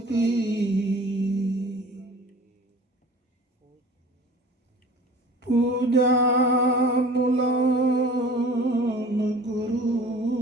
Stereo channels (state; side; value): normal; both; correlation 0.44